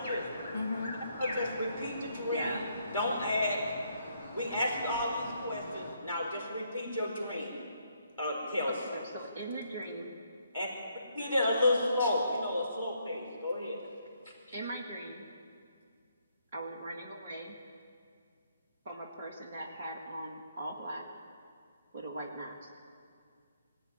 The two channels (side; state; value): both; inverted; correlation -0.73